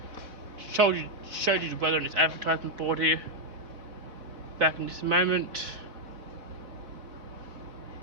Showed you the weather on this advertisement board here. Back in just a moment.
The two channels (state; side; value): late; left; 4.3 ms